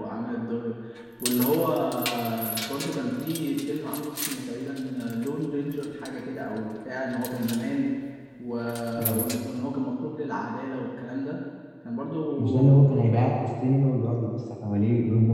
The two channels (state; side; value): identical; both; correlation 1.00